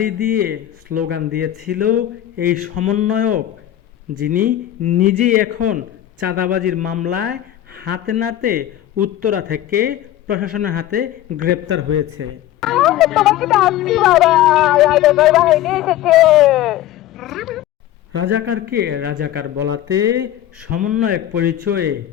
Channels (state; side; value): quieter; right; 12.7 dB